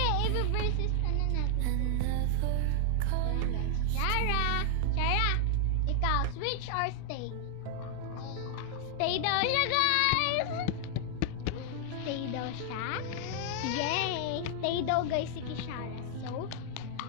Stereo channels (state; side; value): different; both; correlation 0.00